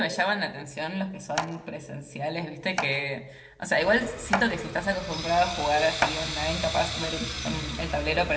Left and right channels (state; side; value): identical; both; correlation 1.00